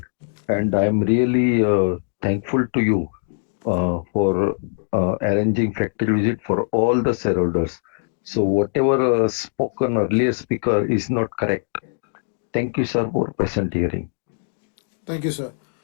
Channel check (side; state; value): right; silent; digital silence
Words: and I am really thankful to you for arranging factory visit for all the shareholders. So whatever spoken earlier speaker is not correct. Thank you, sir, for patient hearing. Thank you, sir.